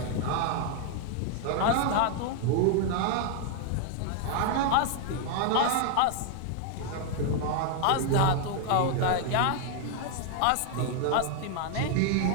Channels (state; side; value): different; both; correlation 0.00